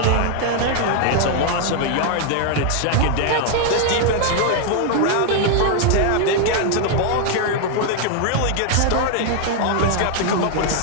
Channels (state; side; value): different; both; correlation 0.00